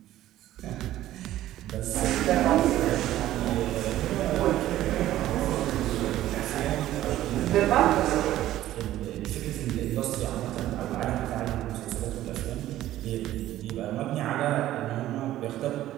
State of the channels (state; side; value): quieter; left; 14.0 dB